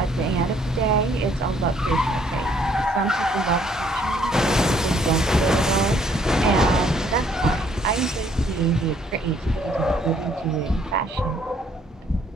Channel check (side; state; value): both; normal; correlation 0.65